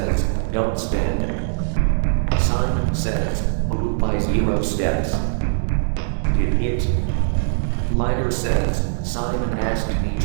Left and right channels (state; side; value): silent; left; digital silence